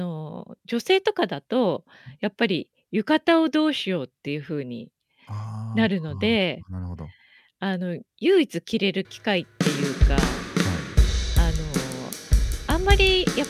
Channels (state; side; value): identical; both; correlation 1.00